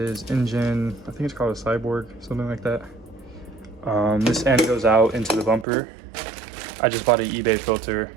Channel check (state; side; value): drops out; left; at 5.7 s